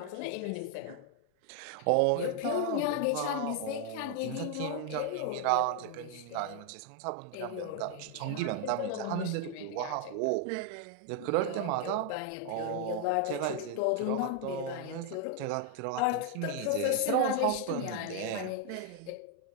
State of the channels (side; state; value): both; different; correlation 0.00